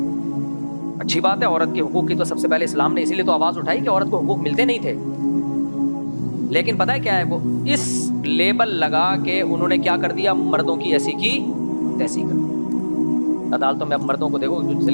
اچھی بات ہے. عورت کے حقوق کی تو سب سے پہلے اسلام نے اسی لیے تو آواز اٹھائی کہ عورت کو حقوق ملتے نہیں تھے. لیکن پتہ ہے کیا ہے, وہ اس لیبل لگا کے انہوں نے کیا کر دیا, مردوں کی ایسی کی تیسی کر دی. عدالتوں میں اب مردوں کو دیکھو جو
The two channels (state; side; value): inverted; both; correlation -1.00